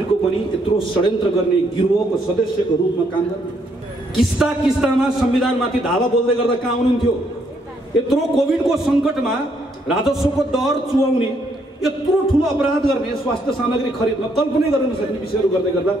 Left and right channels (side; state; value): both; normal; correlation 0.72